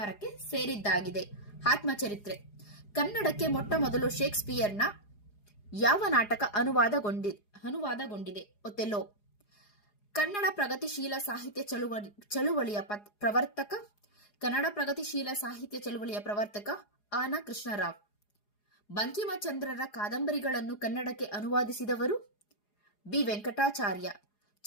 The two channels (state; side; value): late; right; 4.8 ms